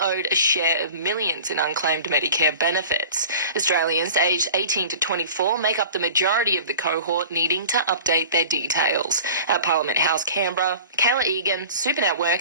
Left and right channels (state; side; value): inverted; both; correlation -0.41